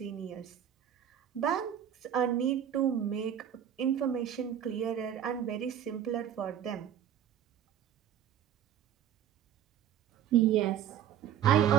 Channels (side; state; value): left; quieter; 9.8 dB